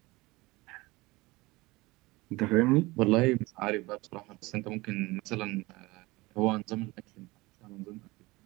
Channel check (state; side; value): quieter; left; 21.8 dB